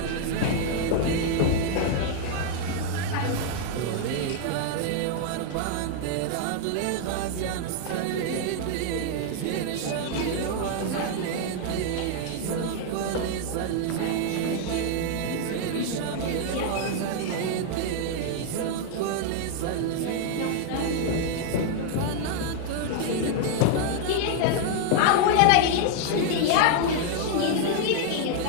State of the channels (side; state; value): both; different; correlation 0.00